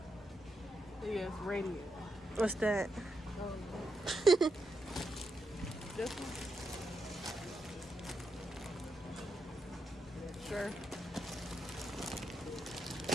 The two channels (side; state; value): both; normal; correlation 0.84